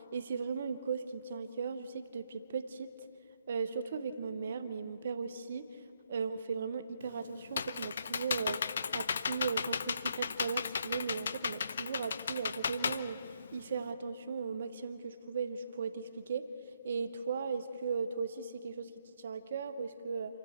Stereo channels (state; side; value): inverted; both; correlation -0.76